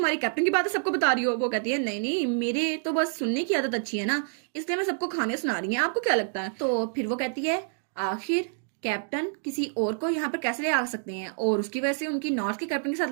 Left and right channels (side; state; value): left; silent; digital silence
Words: कैप्टन की बातें सबको बता रही हो। वो कहती है नहीं नहीं, मेरे तो बस सुनने की आदत अच्छी है ना, इसलिए मैं सबको कहानियां सुना रही है, आपको क्या लगता है। तो फिर वो कहती है आखिर कैप्टन किसी और को यहाँ पर कैसे ले आ सकते हैं, और उसकी वजह से उनकी नॉर्थ के कैप्टन के साथ